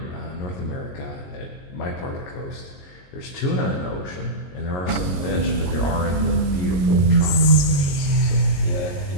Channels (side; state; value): right; late; 22 ms